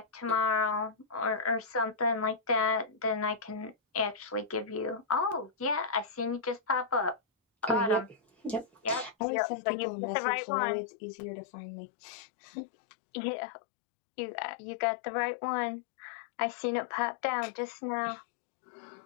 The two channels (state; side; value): drops out; right; at 9.2 s